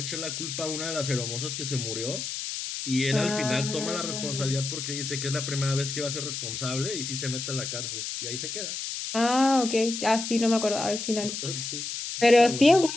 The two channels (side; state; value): left; noise; hiss, 5 dB below the sound